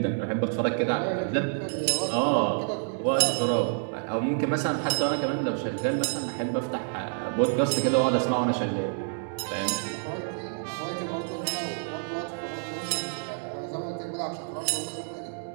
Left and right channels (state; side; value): silent; left; 59 dB below the other